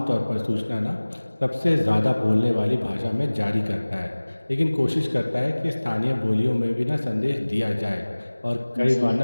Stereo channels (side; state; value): both; inverted; correlation -1.00